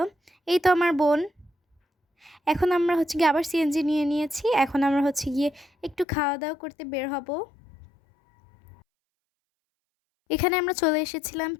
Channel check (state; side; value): drops out; right; at 6.1 s